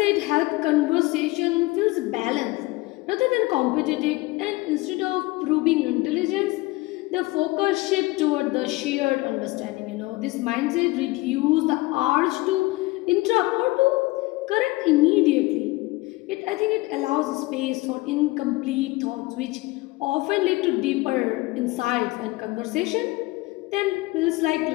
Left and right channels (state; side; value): quieter; right; 21.5 dB